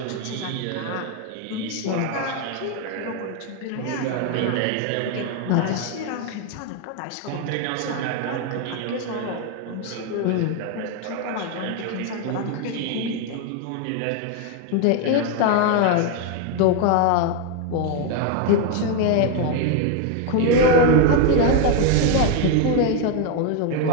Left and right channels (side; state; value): both; different; correlation 0.01